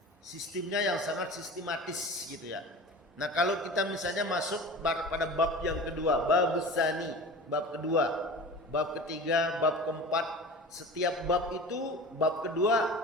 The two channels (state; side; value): normal; both; correlation 0.35